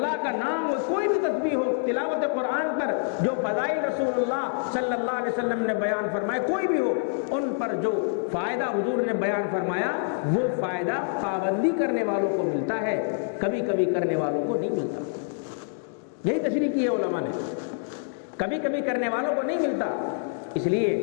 کا نام ہو، کوئی بھی تسبیح ہو، تلاوت قرآن پر جو فضائل رسول اللہ صلی اللہ علیہ وسلم نے بیان فرمائے کوئی بھی ہو، ان پر جو فائدہ حضور نے بیان فرمایا وہ فائدہ پابندی کرنے والوں کو ملتا ہے، کبھی کبھی کرنے والوں کو نہیں ملتا۔ یہی تشریح کی ہے علماء نے، کبھی کبھی کرنے والوں کو نہیں ملتا۔ اس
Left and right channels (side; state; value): right; silent; digital silence